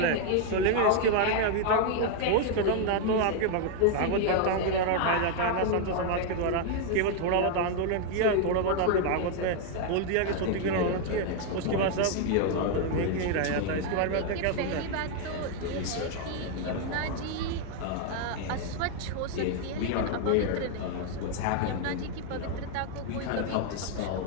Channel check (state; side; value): different; both; correlation 0.00